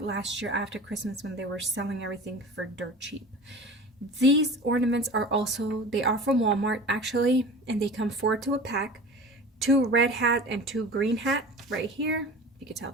last year after Christmas when they were selling everything for dirt cheap. These ornaments are also, they are from Walmart actually, and they come 4 to a pack. 2 red hat and 2 green hat right here. You can tell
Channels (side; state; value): both; normal; correlation 0.37